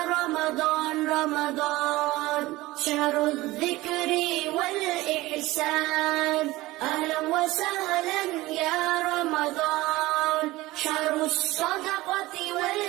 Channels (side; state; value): left; quieter; 18.9 dB